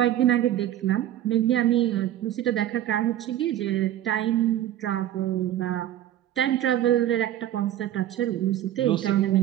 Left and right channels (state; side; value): quieter; left; 12.4 dB